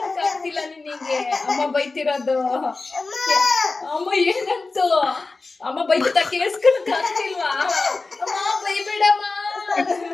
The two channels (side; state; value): right; quieter; 3.7 dB